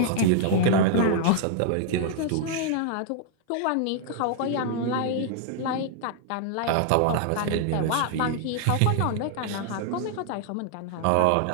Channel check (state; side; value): different; both; correlation 0.00